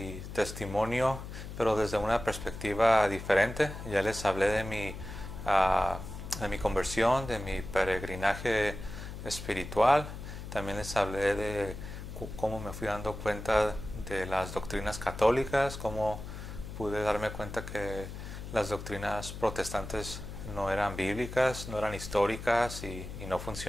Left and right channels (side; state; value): left; noise; hum, 10 dB below the sound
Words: testimonio, pero desde una perspectiva diferente. Ya les hablé de mi conversión, de mi peregrinaje espiritual. También les hablé de cómo me fui dando cuenta de las doctrinas católicas, cómo pude darme cuenta que las doctrinas protestantes no eran bíblicas, no eran históricas y no